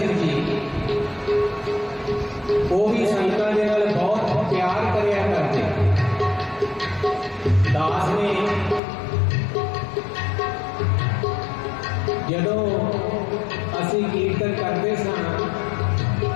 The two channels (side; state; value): right; drops out; at 8.8 s